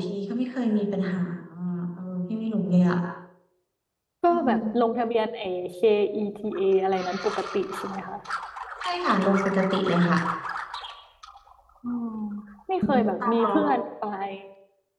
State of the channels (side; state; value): both; identical; correlation 1.00